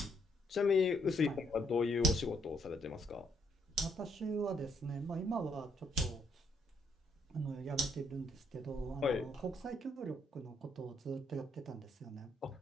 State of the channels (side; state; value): both; normal; correlation 0.70